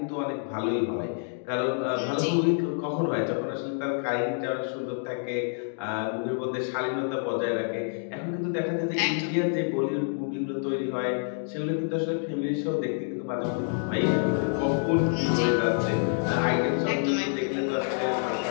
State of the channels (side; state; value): right; silent; 58 dB below the other